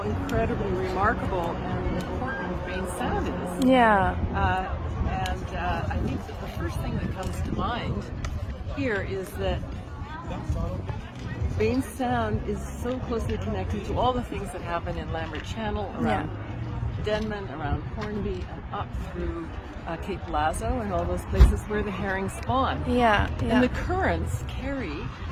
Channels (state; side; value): identical; both; correlation 1.00